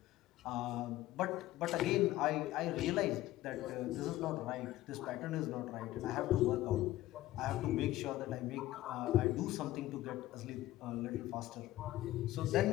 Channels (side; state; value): right; quieter; 15.6 dB